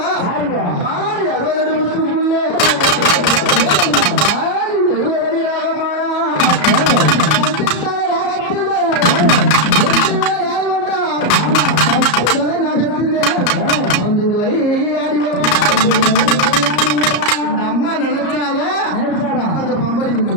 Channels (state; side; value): late; right; 34 ms